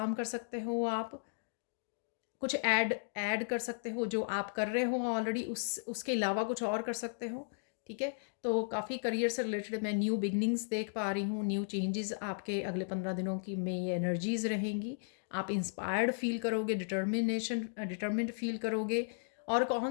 कर सकते हो, आप कुछ ऐड कर सकते हो जो आप कर रहे हो ऑलरेडी, उसके अलावा कुछ और कर सकते हो, ठीक है। तो काफ़ी करियर से रिलेटेड मैं न्यू बिगनिंग्स देख पा रही हूँ, न्यू चेंजेस आपके अगले 15 दिनों की में ये एनर्जीज रहेंगी। आप इंस्पायर्ड फील करोगे, डिटर्मिन्ड फील करोगे, और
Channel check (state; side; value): silent; right; digital silence